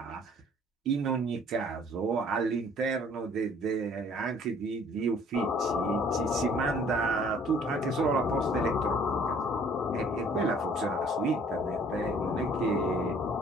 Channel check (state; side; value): normal; both; correlation 0.56